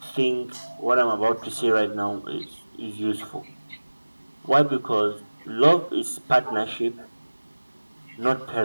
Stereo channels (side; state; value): both; inverted; correlation -1.00